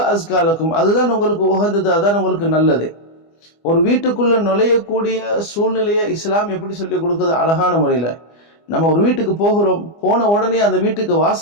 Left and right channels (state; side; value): late; right; 24 ms